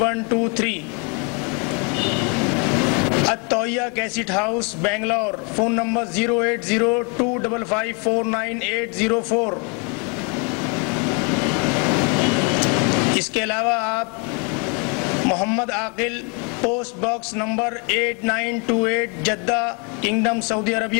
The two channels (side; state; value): right; quieter; 34.0 dB